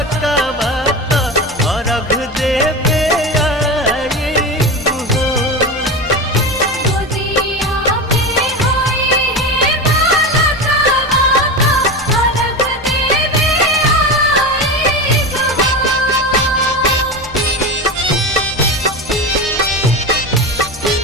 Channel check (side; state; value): both; normal; correlation 0.23